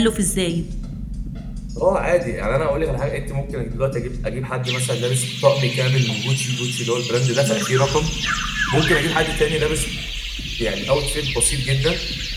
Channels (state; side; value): identical; both; correlation 1.00